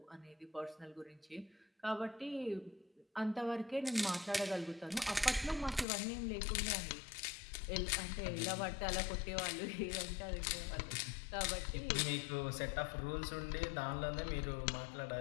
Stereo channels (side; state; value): right; drops out; at 5.9 s